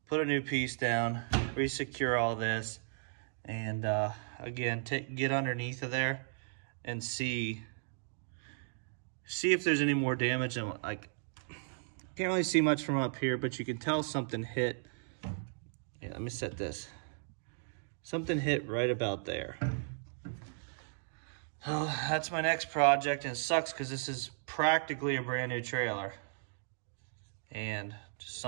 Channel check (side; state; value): left; silent; digital silence